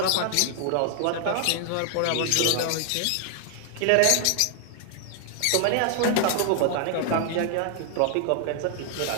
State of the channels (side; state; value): both; different; correlation 0.00